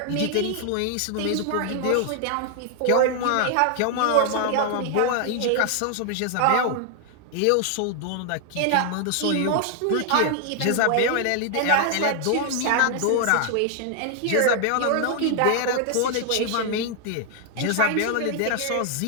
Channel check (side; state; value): both; different; correlation 0.00